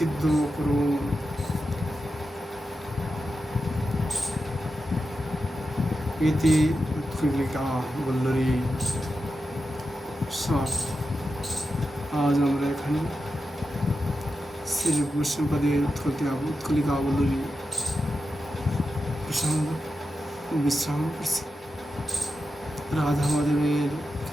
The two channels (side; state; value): both; normal; correlation 0.89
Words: করুন। ইতি উৎকলিকা বল্লরী সমাপ্ত। আজ আমরা এখানে শ্রী বৈষ্ণবদের উৎকলিকা বল্লরী প্রসঙ্গ বিশ্রাম করছি। রাধা মাধবের